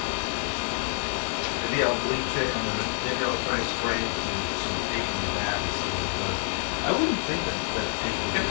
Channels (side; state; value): right; silent; 60 dB below the other